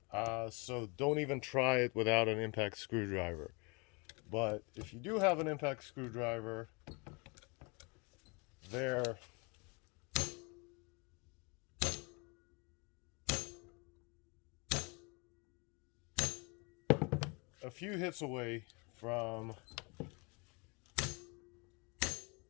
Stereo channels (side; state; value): right; quieter; 30.8 dB